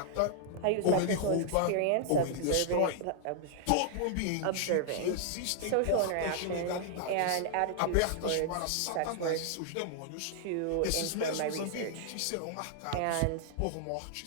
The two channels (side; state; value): both; different; correlation -0.01